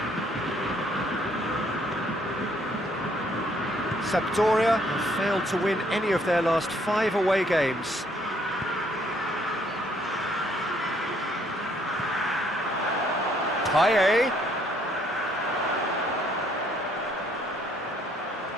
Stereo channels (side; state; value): both; normal; correlation 0.66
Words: Sampdoria have failed to win any of their last 5 away games. KYIV.